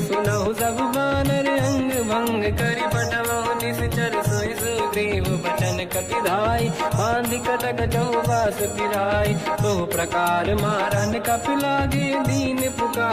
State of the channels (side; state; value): both; identical; correlation 1.00